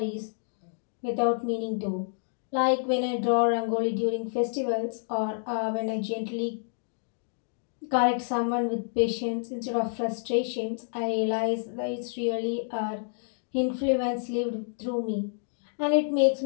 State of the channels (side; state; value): right; silent; digital silence